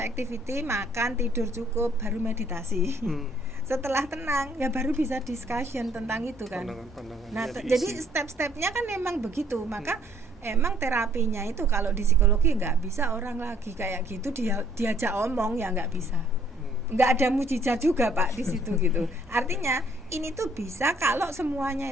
activity makan, tidur cukup, baru meditasi. Setelah tenang ya baru bisa discussion tentang itu kan. Nah jadi step-stepnya kan memang begitu. Maka emang terapinya itu kalau di psikologi nggak bisa orang lagi kayak gitu diajak omong ya nggak bisa. Nggak ada mujizat juga Pak di situ gitu. Artinya ini tuh bisa kalau semuanya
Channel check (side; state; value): both; normal; correlation 0.62